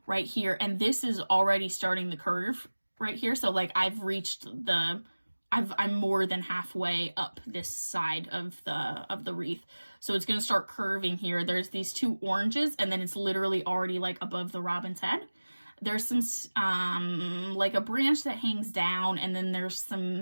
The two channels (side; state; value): both; inverted; correlation -1.00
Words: right here, and this is already starting the curve right here. So like I've reached the, I'm more than halfway up this side of the wreath. So it's going to start curving here. There's these 2 oranges, and then it's literally already like above the robin's head. There's some like a branch that hangs down, and then there's